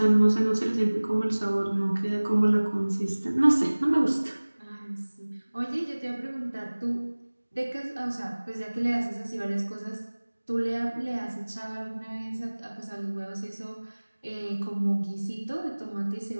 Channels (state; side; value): inverted; both; correlation -1.00